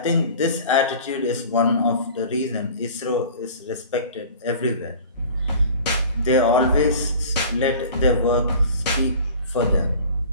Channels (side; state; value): both; inverted; correlation -0.42